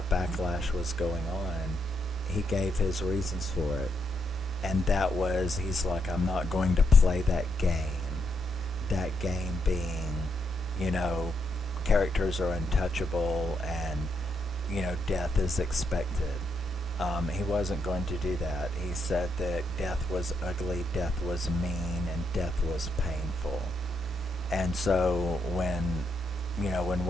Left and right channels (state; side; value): normal; both; correlation 0.80